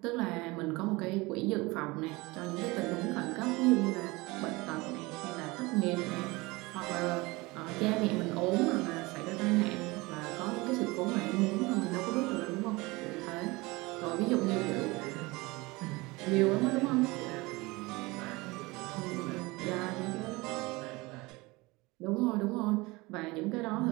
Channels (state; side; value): quieter; left; 23.1 dB